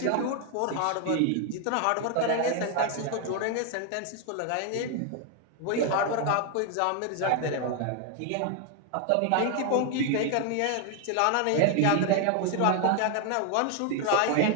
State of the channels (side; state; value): both; different; correlation 0.00